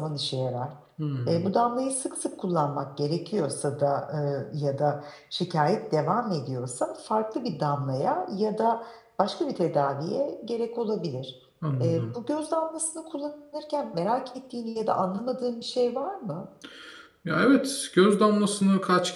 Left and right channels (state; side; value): identical; both; correlation 1.00